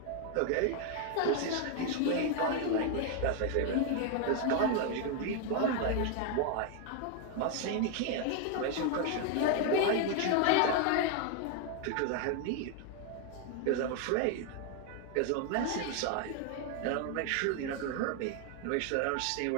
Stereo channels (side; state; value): both; different; correlation 0.01